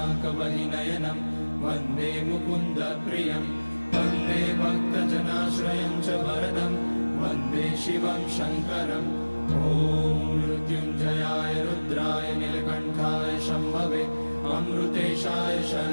वन्दे मुकुन्दप्रियं वन्दे भक्तजनाश्रयं च वरदं वन्दे शिवं शङ्करम् ॐ मृत्युञ्जयाय रुद्राय नीलकण्ठाय शम्भवे अमृतेशाय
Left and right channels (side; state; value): both; inverted; correlation -1.00